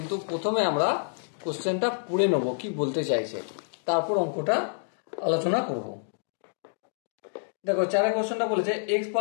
প্রথমে আমরা কোশ্চেনটা পড়ে নেব কি বলতে চাইছে, তারপর অঙ্কটা আলোচনা করব। দেখো 4 কোশ্চেনটা বলেছে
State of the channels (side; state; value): right; silent; digital silence